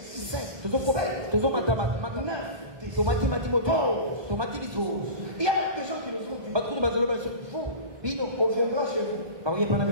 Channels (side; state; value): left; late; 1.2 ms